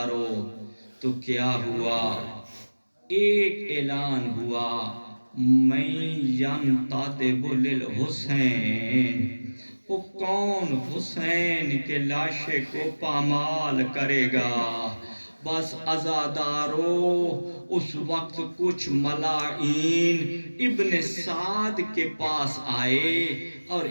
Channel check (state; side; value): inverted; both; correlation -1.00